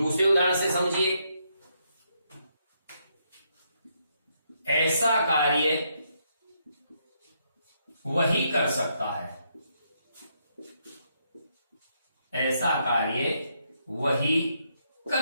उदाहरण से समझिए। ऐसा कार्य वही कर सकता है, ऐसा कार्य वही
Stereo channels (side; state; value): both; inverted; correlation -0.77